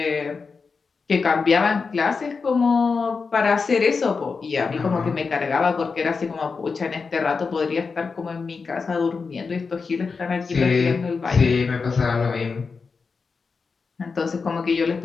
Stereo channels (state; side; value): quieter; right; 4.9 dB